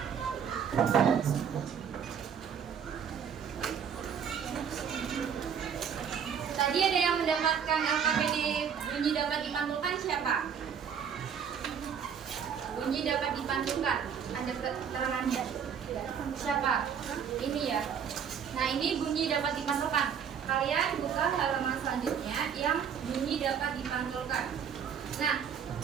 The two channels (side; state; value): left; quieter; 7.6 dB